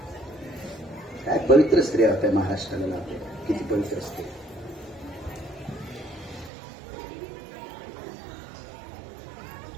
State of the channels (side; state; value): left; drops out; at 6.5 s